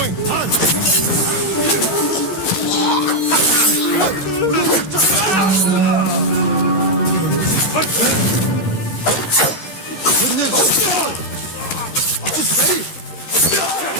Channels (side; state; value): right; late; 13 ms